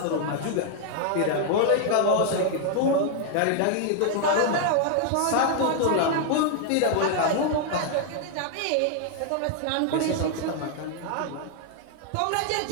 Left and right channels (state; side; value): different; both; correlation 0.00